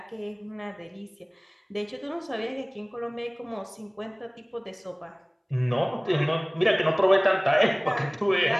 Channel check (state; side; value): identical; both; correlation 1.00